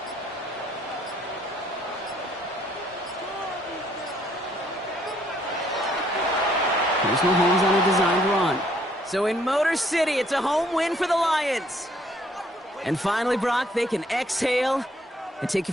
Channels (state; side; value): normal; both; correlation 0.65